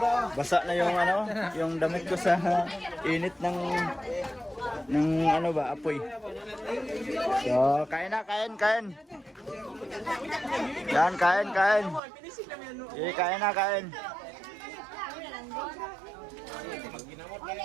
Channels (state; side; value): drops out; left; at 12.0 s